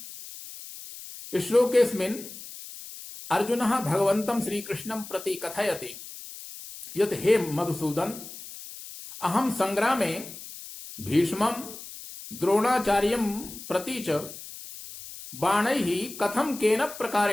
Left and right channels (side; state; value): left; noise; hiss, 13 dB below the sound